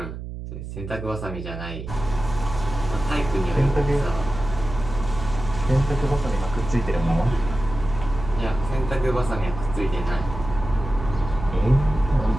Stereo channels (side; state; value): right; noise; hum, 9 dB below the sound